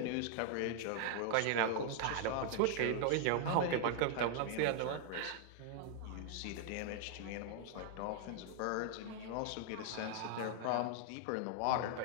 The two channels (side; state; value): both; different; correlation 0.00